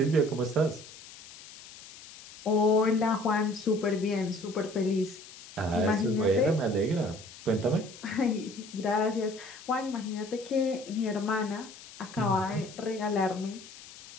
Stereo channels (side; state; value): left; noise; hiss, 18 dB below the sound